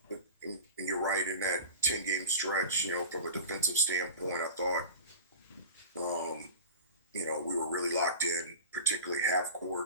you're right, in that 10-game stretch, from a defensive standpoint, I thought, we were really locked in, particularly half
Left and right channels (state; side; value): inverted; both; correlation -0.33